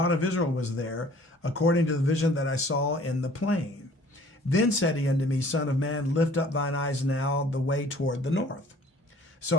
of Israel was there, according to the vision that I saw in the plain. Then said he unto me, Son of man, lift up thine eyes now the way toward the north. So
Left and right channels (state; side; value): normal; both; correlation 0.53